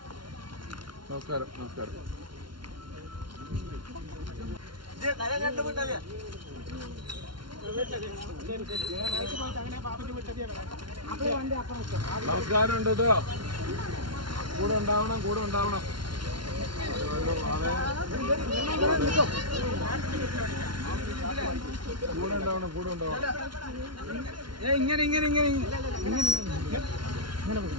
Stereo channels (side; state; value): left; late; 0.72 ms